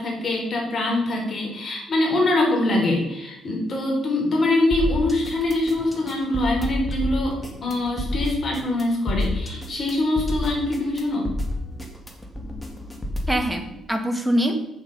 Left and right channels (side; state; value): both; normal; correlation 0.79